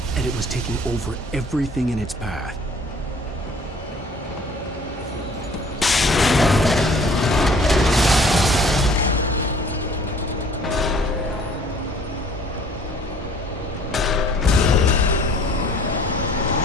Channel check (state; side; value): normal; both; correlation 0.54